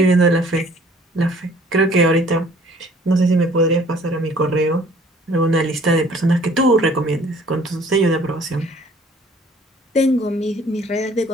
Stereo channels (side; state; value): both; normal; correlation 0.55